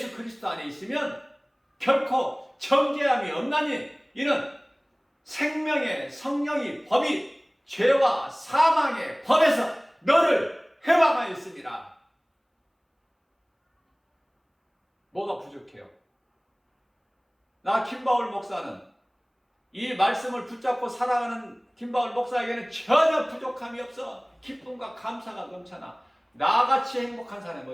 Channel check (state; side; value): identical; both; correlation 1.00